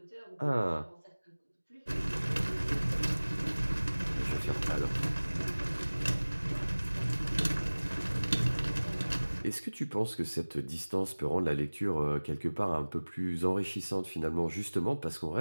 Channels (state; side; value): inverted; both; correlation -1.00